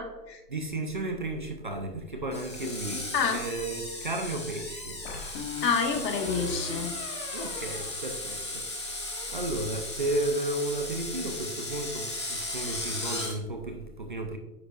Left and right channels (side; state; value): both; normal; correlation 0.07